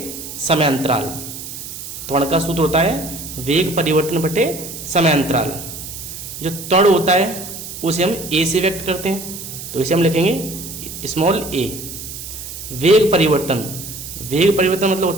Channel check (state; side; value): noise; right; hiss, 10 dB below the sound